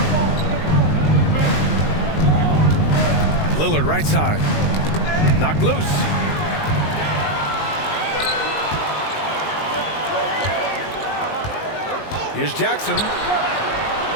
Lillard right side. Knocked loose. Here's Jackson.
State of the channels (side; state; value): right; late; 19 ms